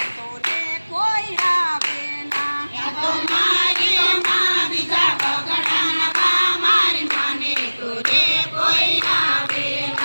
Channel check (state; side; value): inverted; both; correlation -1.00